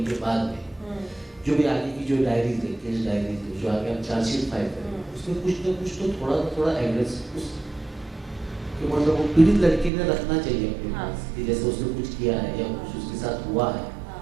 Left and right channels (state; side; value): drops out; left; at 9.9 s